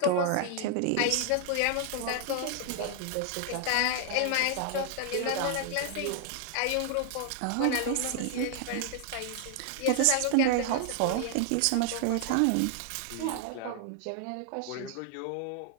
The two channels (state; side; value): different; both; correlation 0.00